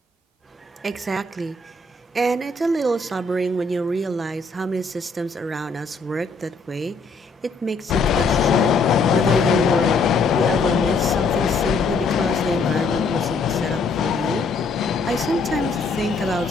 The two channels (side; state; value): right; quieter; 3.9 dB